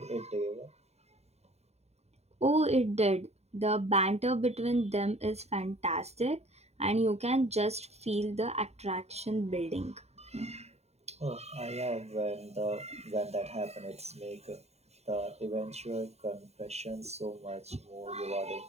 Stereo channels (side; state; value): left; late; 0.31 ms